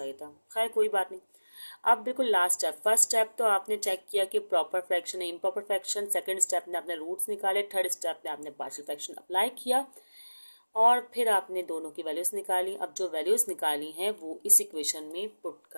था। खैर कोई बात नहीं। अब बिल्कुल लास्ट स्टेप, फर्स्ट स्टेप तो आपने चेक किया कि प्रॉपर फ्रैक्शन है इम्प्रॉपर फ्रैक्शन, सेकंड स्टेप में आपने रूट्स निकाले, थर्ड स्टेप में आपने पार्शियल फ्रैक्शन अप्लाई किया और फिर आपने दोनों की वैल्यूज निकाली। अब जो वैल्यूज निकाली हैं वो इस इक्वेशन में पुट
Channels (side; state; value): both; inverted; correlation -1.00